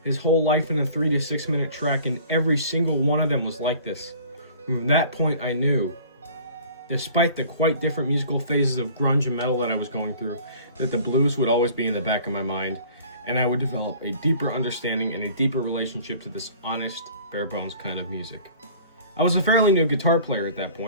his whole life in a 3 to 6 minute track, and every single one of them was like this. From that point I knew, despite the quite different musical phases of grunge and metal that I was going through, that the blues would always be in the back of my mind, and I would develop a deeper understanding and a deeper relationship to this honest, bare bones kind of music. I was a fairly new guitar player at that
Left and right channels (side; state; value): both; inverted; correlation -0.48